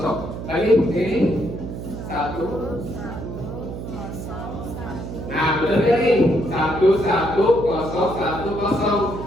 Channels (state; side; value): noise; right; hum, 8 dB below the sound